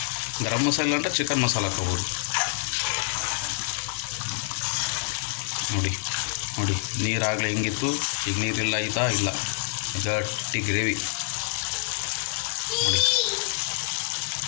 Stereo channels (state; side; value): silent; right; digital silence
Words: ಗರಂ ಮಸಾಲ ಅಂದರೆ ಚಿಕನ್ ಮಸಾಲ ಹಾಕೋಬೋದು ನೋಡಿ. ನೋಡಿ ನೀರಾಗಲೇ ಹೆಂಗಿತ್ತು, ಈಗ ನೀರಿಲ್ಲ ಆಯಿತಾ? ಇಲ್ಲ, ಗಟ್ಟಿ ಗ್ರೇವಿ ನೋಡಿ.